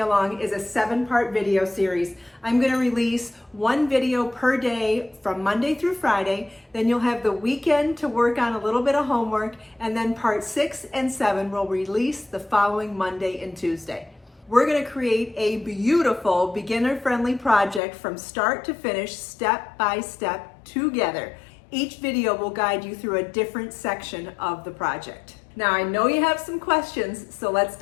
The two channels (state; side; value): drops out; right; at 17.8 s